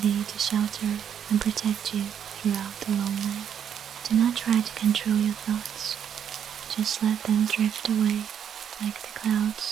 to shelter and protect you throughout the long night. Do not try to control your thoughts. Just let them drift away like the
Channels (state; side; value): quieter; left; 8.6 dB